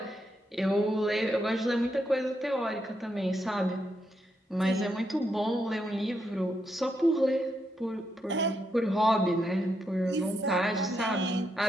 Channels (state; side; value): normal; both; correlation 0.81